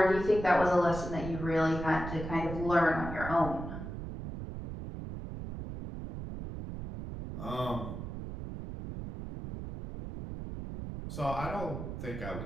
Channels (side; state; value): right; noise; rumble, 8 dB below the sound